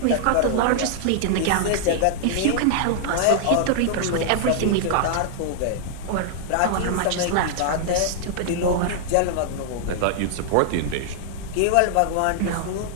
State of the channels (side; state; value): both; different; correlation -0.01